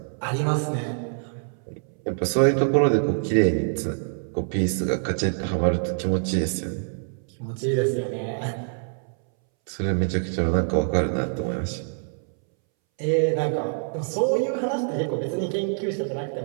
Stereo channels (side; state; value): left; silent; 62 dB below the other